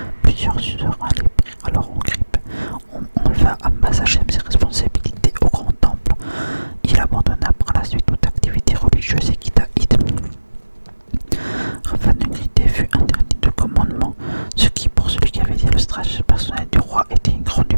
Plusieurs suzerains les prirent alors en grippe. On enleva à Mazachem ses responsabilités au grand temple. Il abandonna par la suite toute activité religieuse et quitta Id. Rafa de Grité fut interdit de commandement, ce qui, pour celui qui avait été le stratège personnel du roi, était une grande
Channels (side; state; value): both; inverted; correlation -1.00